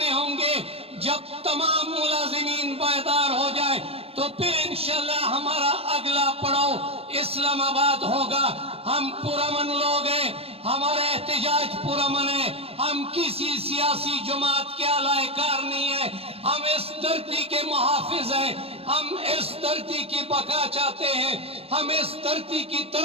होंगे। जब तमाम मुलाजिमीन बेदार हो जाए तो फिर इंशाअल्लाह हमारा अगला पड़ाव इस्लामाबाद होगा। हम पुरअमन लोग हैं, हमारा एहतजाज पुरअमन है, हम किसी सियासी जमात के अलायकार नहीं है, हम इस धरती के मुहाफिज हैं, हम इस धरती की बका चाहते हैं, हम इस धरती की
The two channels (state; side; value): late; left; 0.28 ms